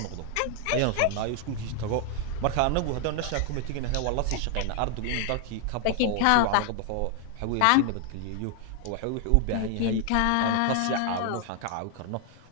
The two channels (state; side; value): different; both; correlation 0.00